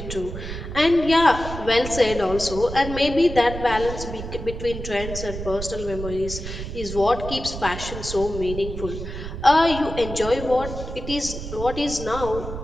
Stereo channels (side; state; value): right; noise; rumble, 8 dB below the sound